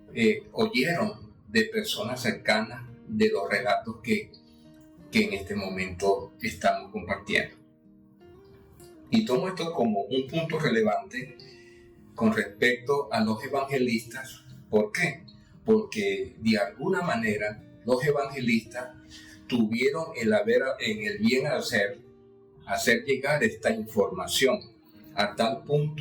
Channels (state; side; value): identical; both; correlation 1.00